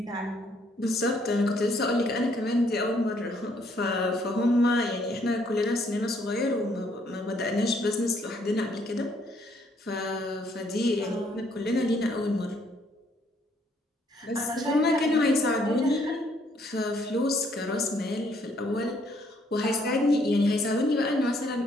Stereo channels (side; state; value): both; normal; correlation 0.68